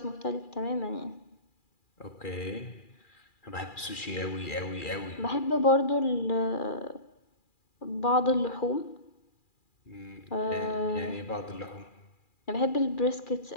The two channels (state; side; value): late; right; 2.4 ms